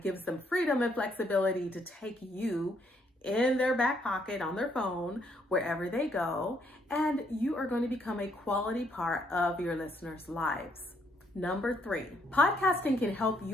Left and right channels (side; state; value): both; normal; correlation 0.71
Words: gives them freedom and flexibility to take you in their back pocket on their phone, wherever they go, and you are going to become a quality part of your listeners' lives. Number 3, podcasting can help